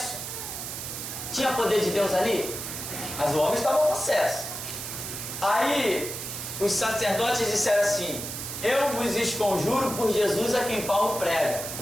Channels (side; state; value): right; noise; hiss, 7 dB below the sound